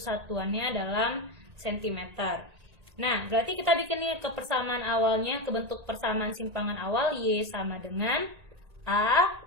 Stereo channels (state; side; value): late; left; 1.8 ms